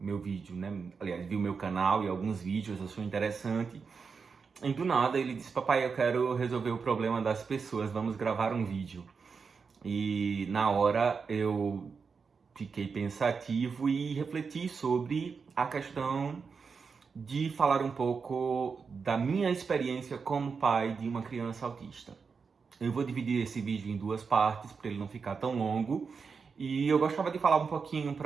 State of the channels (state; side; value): quieter; left; 5.4 dB